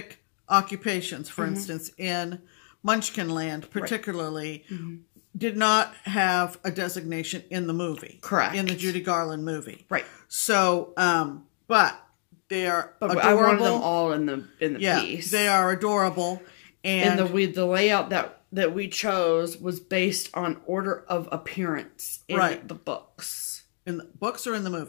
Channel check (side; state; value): right; silent; 55 dB below the other